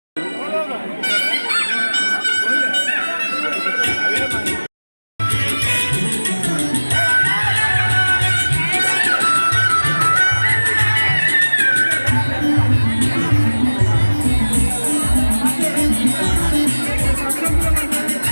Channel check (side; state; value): both; inverted; correlation -1.00